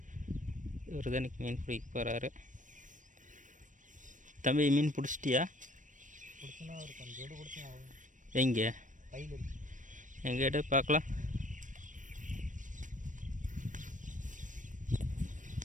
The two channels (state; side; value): late; left; 0.37 ms